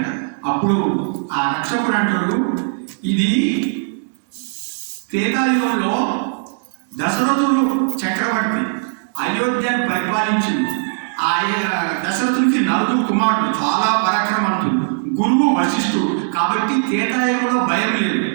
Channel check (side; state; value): left; silent; digital silence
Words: అప్పుడు ఆ రక్షకుడు అంటాడు ఇది త్రేతాయుగంలో దశరథుడు చక్రవర్తి అయోధ్యను పరిపాలించింది. ఆ దశరథునికి నలుగురు కుమారుడు, చాలా పరాక్రమవంతుడు, గురువు వశిష్ఠుడు, కాబట్టి త్రేతాయుగంలో భయం లేదు.